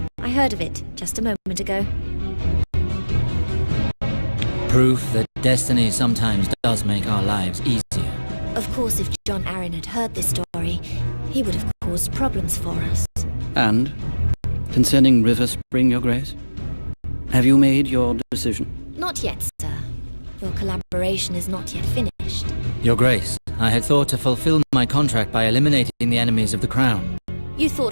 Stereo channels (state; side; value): inverted; both; correlation -1.00